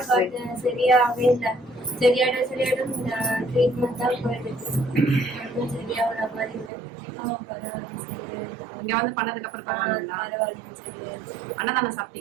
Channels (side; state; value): left; drops out; at 6.7 s